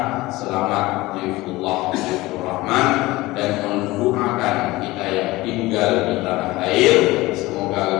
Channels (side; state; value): right; quieter; 19.7 dB